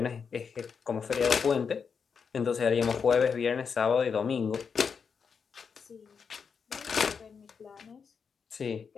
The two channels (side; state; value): right; quieter; 6.1 dB